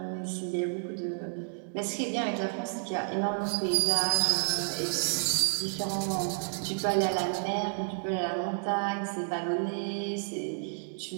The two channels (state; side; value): silent; left; digital silence